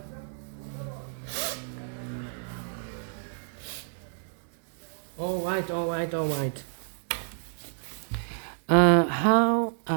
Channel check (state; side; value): silent; left; digital silence